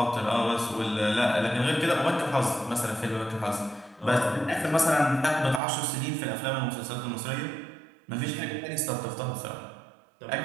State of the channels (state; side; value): drops out; left; at 5.6 s